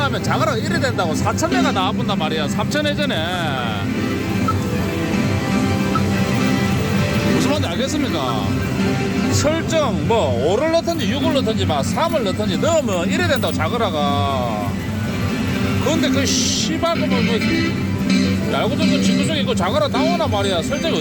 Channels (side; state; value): both; identical; correlation 1.00